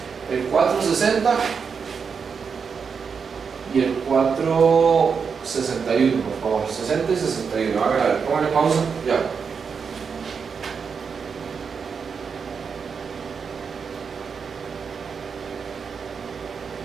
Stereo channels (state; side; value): quieter; left; 6.0 dB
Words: el 460 y el 461, por favor. 60 y 61. A ver, pónganle pausa. Ya.